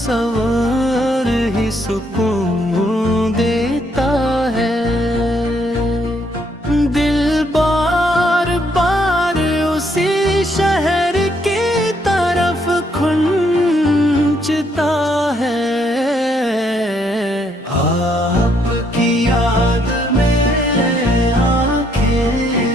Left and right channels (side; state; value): both; normal; correlation 0.71